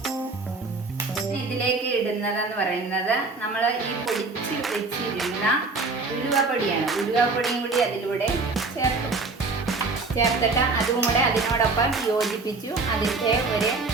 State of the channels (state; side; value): quieter; left; 3.8 dB